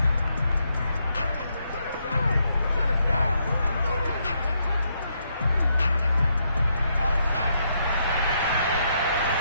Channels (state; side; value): inverted; both; correlation -0.77